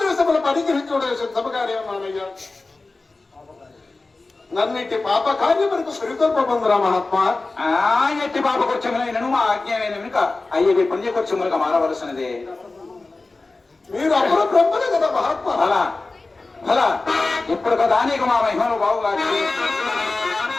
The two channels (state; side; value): quieter; right; 3.4 dB